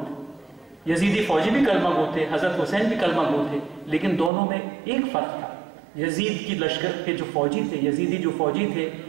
تھے، یزیدی فوجی بھی کلمہ گو تھے، حضرت حسین بھی کلمہ گو تھے، لیکن دونوں میں ایک فرق تھا۔ یزید کی لشکر کے جو فوجی تھے، یزیدی جو فوجی تھے،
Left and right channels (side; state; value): left; drops out; at 4.3 s